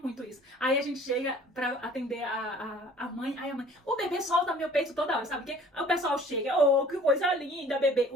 isso, aí a gente chega pra atender a mãe, aí a mãe, o bebê solta meu peito toda hora, sabe o quê? Aí o pessoal chega, oh, que coisa linda, bebê,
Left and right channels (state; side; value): normal; both; correlation 0.50